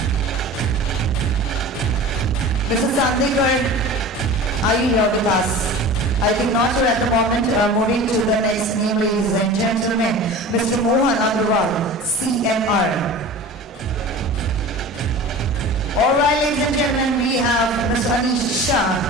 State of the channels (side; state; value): both; normal; correlation 0.37